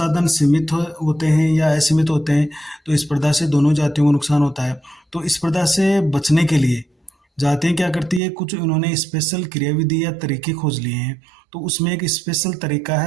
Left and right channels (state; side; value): drops out; left; at 8.2 s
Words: सीमित होते हैं या असीमित होते हैं, तो स्पर्धा से दोनों जातियों को नुकसान होता है। तो स्पर्धा से बचने के लिए जातियाँ क्या करती है, कुछ उन्होंने स्पेशल क्रियाविधि या तरीके खोज लिए हैं। तो उसमें एक स्पेशल तरीका